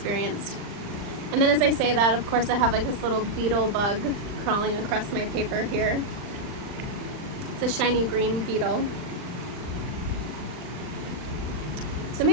And then as I say that, of course I have like this little beetle bug crawling across my paper here. It's a shiny green beetle. So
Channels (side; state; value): left; late; 39 ms